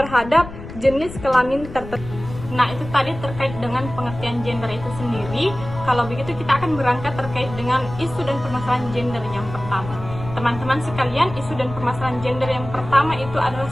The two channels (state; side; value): noise; left; rumble, 12 dB below the sound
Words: jenis kelamin tertentu. Nah, itu tadi terkait dengan pengertian gender itu sendiri. Kalau begitu kita akan berangkat terkait dengan isu dan permasalahan gender yang pertama. Teman-teman sekalian, isu dan permasalahan gender yang pertama itu adalah